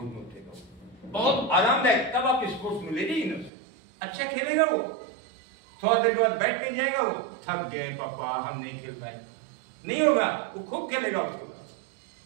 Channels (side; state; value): left; drops out; at 3.5 s